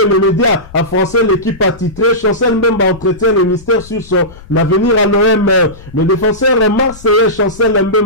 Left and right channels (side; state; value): left; noise; rumble, 20 dB below the sound